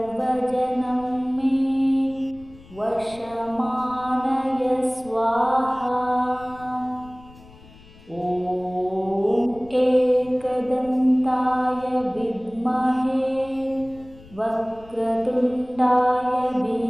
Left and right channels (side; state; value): left; noise; rumble, 22 dB below the sound